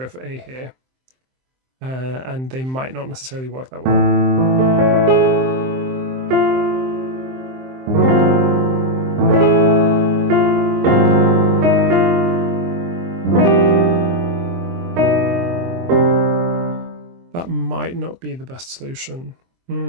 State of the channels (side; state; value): left; late; 23 ms